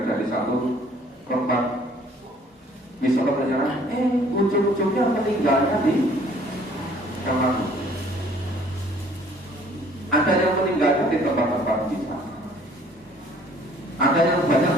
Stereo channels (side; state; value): both; normal; correlation 0.57